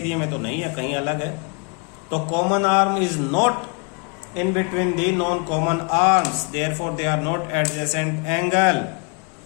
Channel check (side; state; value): right; quieter; 35.6 dB